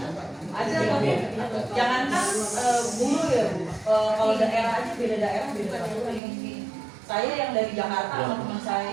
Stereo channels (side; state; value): left; drops out; at 6.2 s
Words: Ada tapi jangankan guru ya Bu. Kalau daerah aja beda daerah beda peraturan. Saya yang dari Jakarta sama teman saya